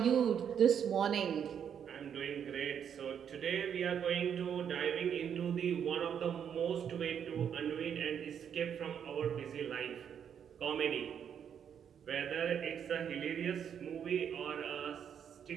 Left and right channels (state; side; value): quieter; left; 8.3 dB